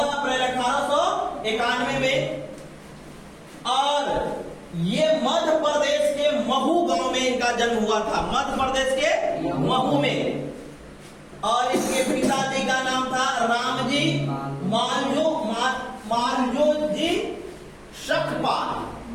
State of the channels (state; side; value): identical; both; correlation 1.00